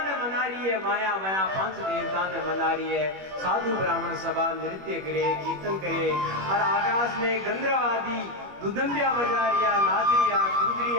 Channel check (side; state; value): left; late; 21 ms